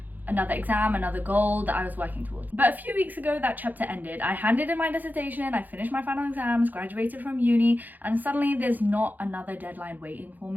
another exam, another goal that I was working towards. But a few weeks ago, that chapter ended. I handed in my dissertation, I finished my final exams, graduated from uni, and suddenly there's not another deadline waiting for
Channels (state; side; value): late; left; 0.084 ms